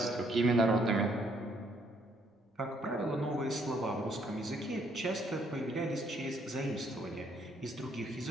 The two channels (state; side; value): normal; both; correlation 0.68